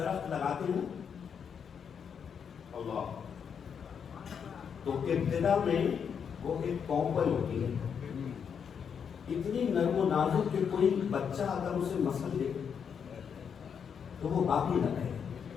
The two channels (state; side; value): quieter; right; 7.1 dB